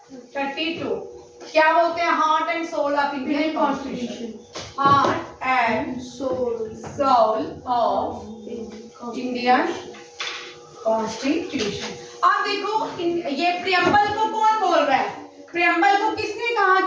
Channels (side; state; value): both; identical; correlation 1.00